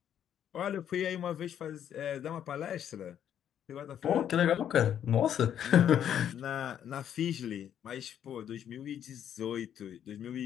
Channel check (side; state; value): right; quieter; 9.7 dB